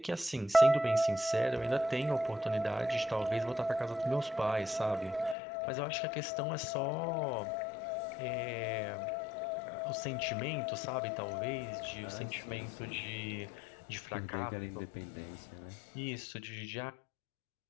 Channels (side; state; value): right; drops out; at 5.4 s